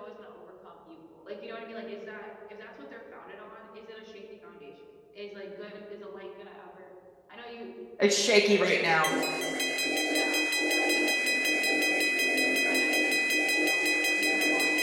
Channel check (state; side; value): identical; both; correlation 1.00